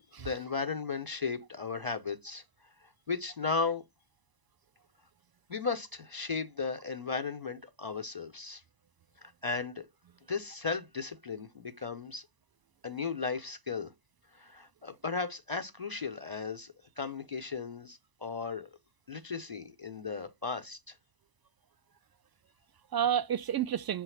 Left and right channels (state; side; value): late; left; 1.0 ms